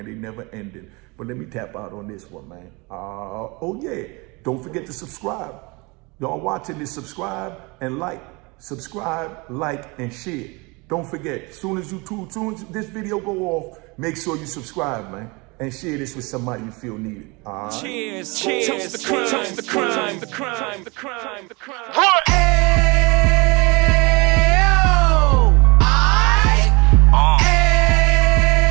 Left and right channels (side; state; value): left; quieter; 27.0 dB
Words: They never ended. But let me tap out on this one, man. Oh, yeah. Don't forget to subscribe. Y'all watching this, subscribe and like. Subscribe, like, and share. Don't forget, soon as this video go off, make sure you subscribe, man. And share this with somebody you feel needed. Cheers, cheers, toast the crime, toast the crime, the crime, the crime, the crime.